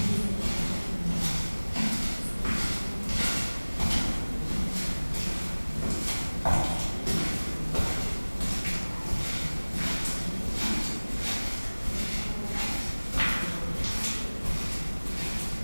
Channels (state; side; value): inverted; both; correlation -1.00